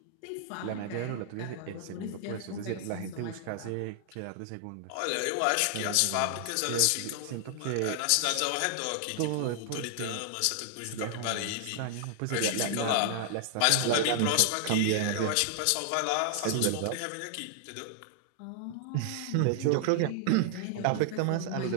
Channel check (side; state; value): both; different; correlation 0.00